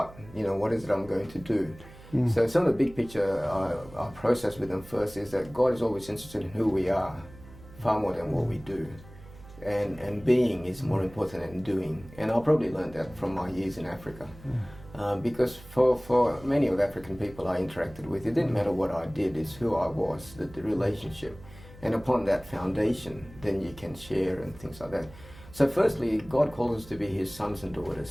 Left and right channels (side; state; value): right; noise; hum, 19 dB below the sound